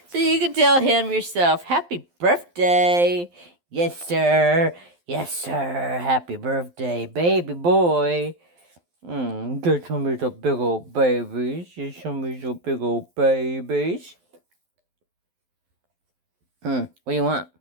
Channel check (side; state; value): left; late; 12 ms